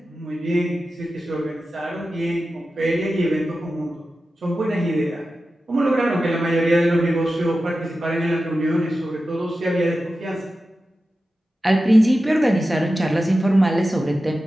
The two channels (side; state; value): both; normal; correlation 0.93